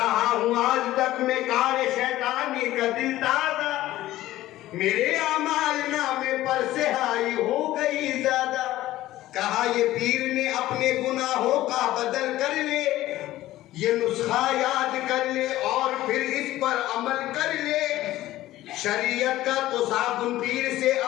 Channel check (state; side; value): quieter; right; 15.4 dB